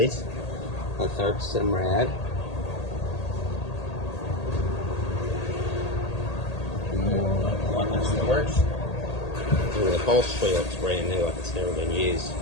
a third Simrad, more weapon storage, and the upholstery looks brand new, like it's never been used.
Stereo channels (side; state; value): right; late; 1.8 ms